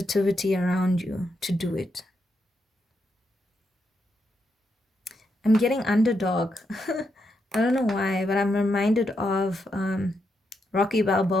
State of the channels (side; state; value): both; normal; correlation 0.82